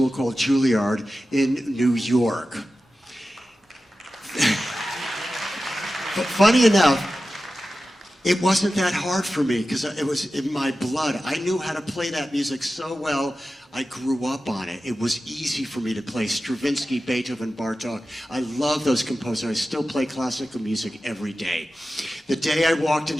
called Juilliard in New York. But funny enough, it wasn't that hard for me because it was in my blood. I knew how to play that music so well. I grew up on it. It was easy for me to play Stravinsky, Beethoven, Bartok. I love those composers. I still play classical music every day. The day I walked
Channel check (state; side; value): normal; both; correlation 0.94